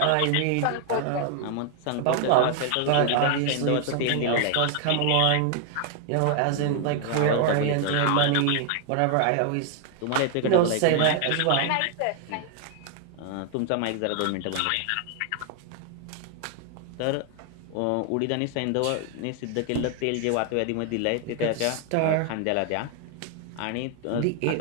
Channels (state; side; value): different; both; correlation 0.00